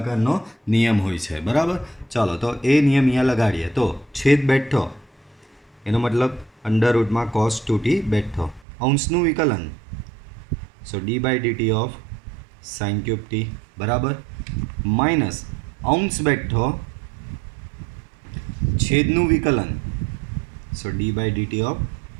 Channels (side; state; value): left; drops out; at 8.6 s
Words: નિયમ હોય છે. બરાબર, ચાલો તો એ નિયમ અહીંયા લગાડીએ. તો છેદ બેઠો એનો મતલબ અંડર રૂટમાં કોસ 2t બેઠો. અંશનું વિકલન, so d by dt of sine cube t. બરાબર, માઇનસ અંશ બેઠો છેદનું વિકલન, so d by dt of